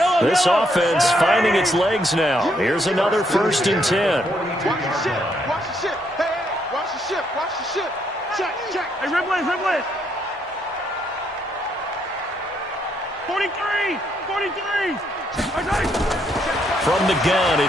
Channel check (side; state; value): both; normal; correlation 0.74